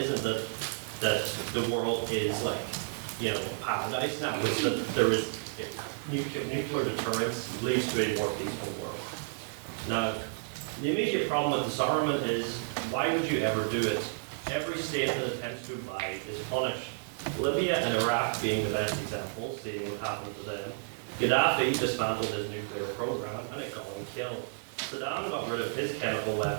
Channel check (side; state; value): left; silent; 57 dB below the other